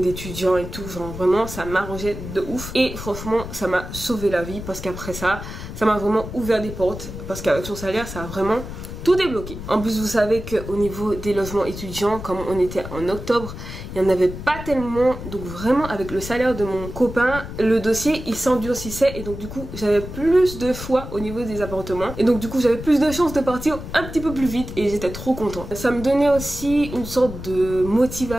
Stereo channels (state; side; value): noise; left; rumble, 10 dB below the sound